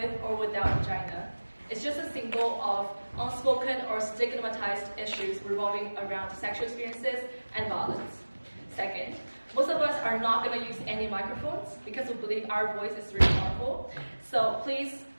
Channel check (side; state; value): both; inverted; correlation -1.00